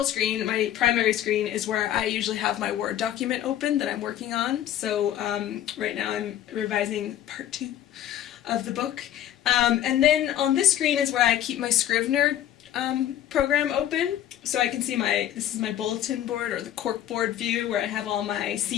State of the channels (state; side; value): quieter; right; 11.7 dB